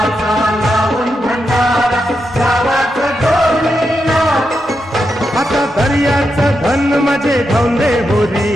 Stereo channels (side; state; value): both; normal; correlation 0.86